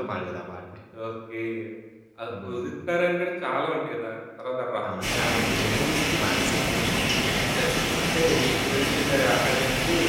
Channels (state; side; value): identical; both; correlation 1.00